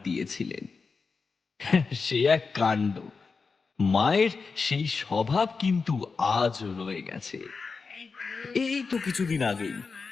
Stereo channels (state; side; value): quieter; right; 4.8 dB